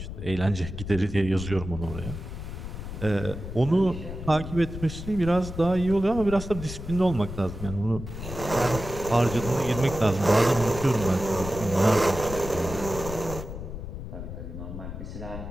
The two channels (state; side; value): noise; left; rumble, 9 dB below the sound